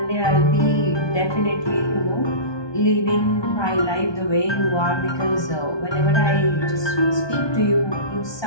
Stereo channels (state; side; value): late; right; 1.2 ms